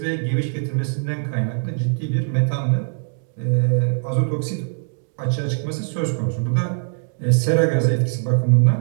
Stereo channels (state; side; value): silent; left; digital silence